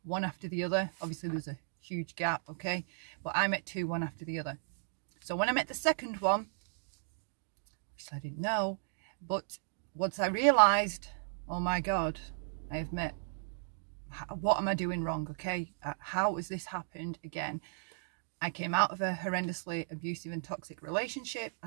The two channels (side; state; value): left; silent; digital silence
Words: one after the other. Obviously there's a huge gap, okay? But I met two, one after the other. So when I met the second one, which I didn't know, but once I realised, oh my God, I have met, what am I doing wrong, okay? How has this happened again? I came out of a horrendously abusive and toxic relationship. I